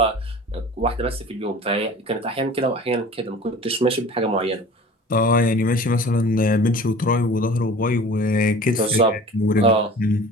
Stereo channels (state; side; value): normal; both; correlation 0.42